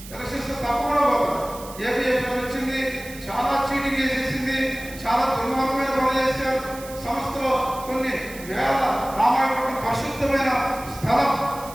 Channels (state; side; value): noise; right; hiss, 16 dB below the sound